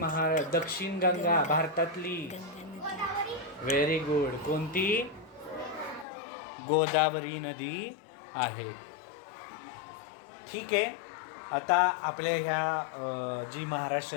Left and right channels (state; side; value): drops out; right; at 6.1 s